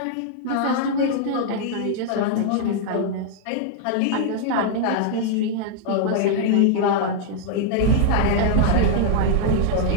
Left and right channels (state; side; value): different; both; correlation 0.00